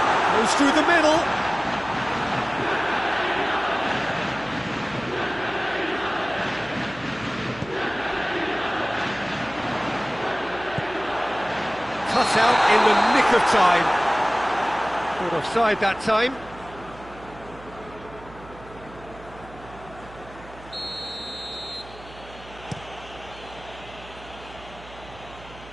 goes through the middle. Cut out in the nick of time. Caught offside that time.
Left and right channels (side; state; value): right; noise; hum, 19 dB below the sound